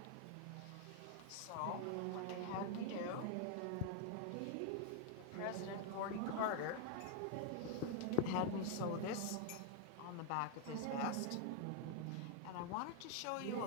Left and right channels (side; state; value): both; different; correlation 0.00